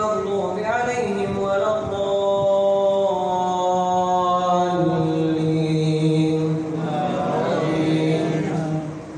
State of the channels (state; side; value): identical; both; correlation 1.00